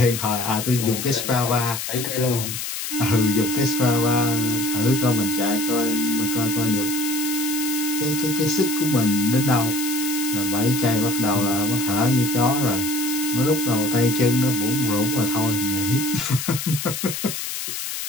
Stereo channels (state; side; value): noise; left; hiss, 5 dB below the sound